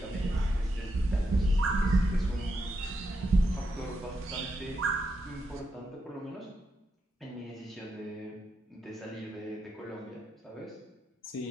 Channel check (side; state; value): both; normal; correlation 0.83